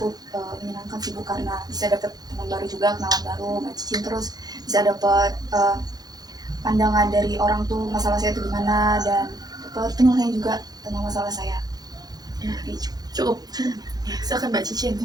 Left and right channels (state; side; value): late; left; 0.19 ms